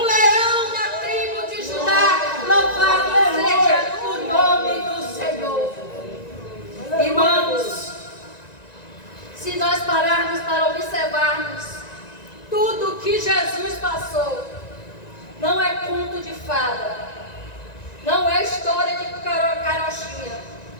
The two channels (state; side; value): late; right; 1.9 ms